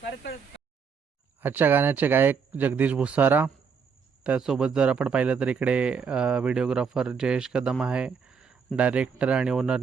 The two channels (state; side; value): quieter; left; 6.0 dB